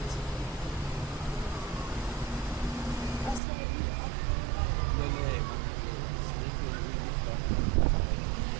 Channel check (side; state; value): left; drops out; at 3.4 s